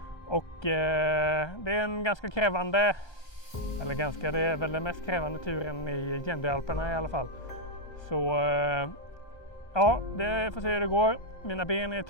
Och det är en ganska krävande, det är väl den mest krävande turen i Gendealperna i alla fall. Så ja, det får se hur det går. Mina ben är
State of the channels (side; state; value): right; late; 1.3 ms